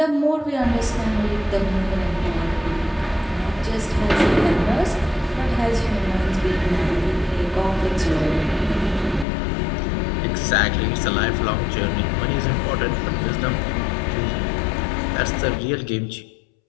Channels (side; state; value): right; drops out; at 9.2 s